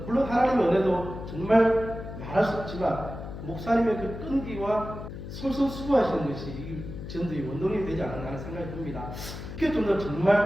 물론 하나님의 은혜도 정말 말할 수 없지만 목사님의 그 끈기와 솔선수고하시는 것이 이 전도의 원동력이 되지 않았나 하는 생각이 듭니다. 그게 좀 더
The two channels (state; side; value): noise; left; hum, 10 dB below the sound